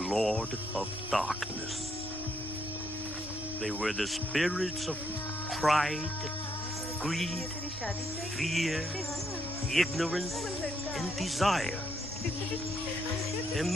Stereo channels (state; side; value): normal; both; correlation 0.74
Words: of Darkness. They were the spirits of pride, greed, fear, ignorance, and desire.